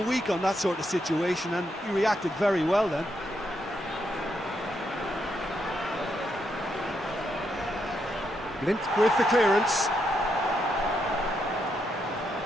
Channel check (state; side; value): normal; both; correlation 0.80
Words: week on that sort of situation, and he reacted very well then. Blint with the clearance.